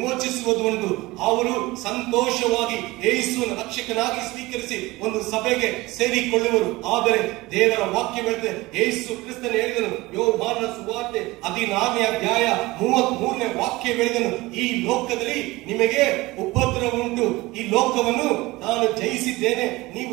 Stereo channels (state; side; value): quieter; left; 20.6 dB